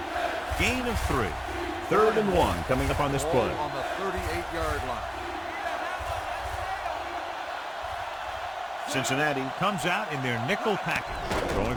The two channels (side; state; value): both; identical; correlation 1.00